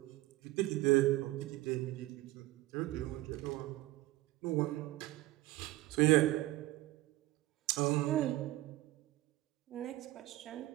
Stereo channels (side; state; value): left; quieter; 17.6 dB